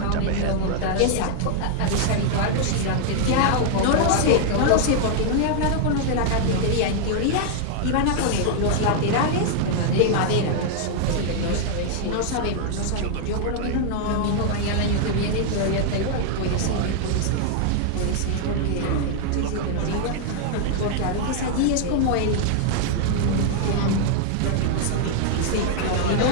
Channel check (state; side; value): different; both; correlation 0.00